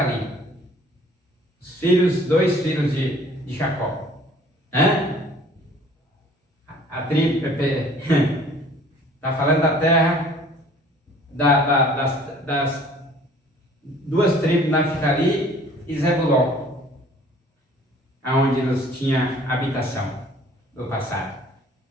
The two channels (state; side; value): normal; both; correlation 0.53